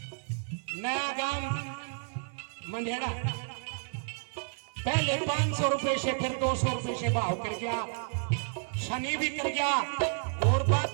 नया गांव मंढेरा पहले 500 रुपए से फिर 200 रुपए से भाव कर गया, शनि भी कर गया और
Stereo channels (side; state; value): left; silent; 57 dB below the other